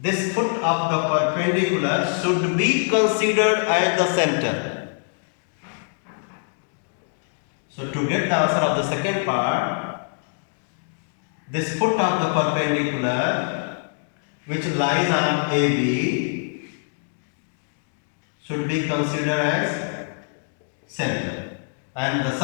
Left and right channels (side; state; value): right; silent; digital silence